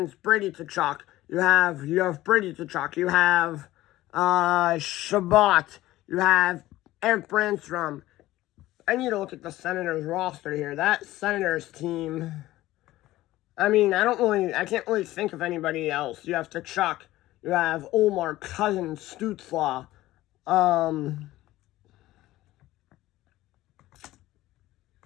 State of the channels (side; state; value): right; quieter; 16.4 dB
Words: Brady Tkachuk. You have Brady Tkachuk. You have Shabbat. You have Eric Brandstrom. I need to look at the Senators roster here. That Senators team, I mean, I can't really think of anybody else. You have Tkachuk. You have Omar, Cousins, Stützle. Omar,